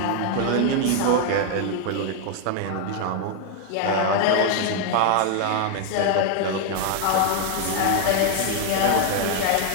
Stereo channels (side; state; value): both; different; correlation 0.00